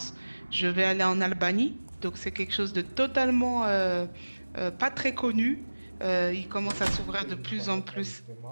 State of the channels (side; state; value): both; inverted; correlation -1.00